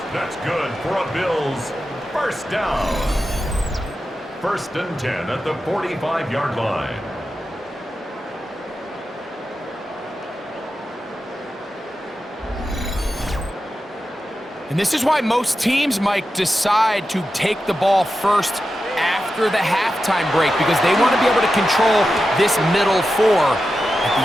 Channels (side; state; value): both; normal; correlation 0.91